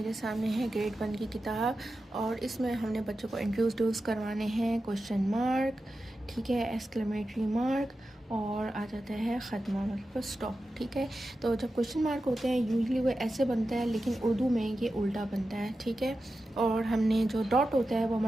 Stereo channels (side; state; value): both; normal; correlation 0.92